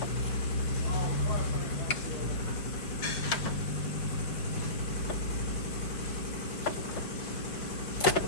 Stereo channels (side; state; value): right; late; 5.5 ms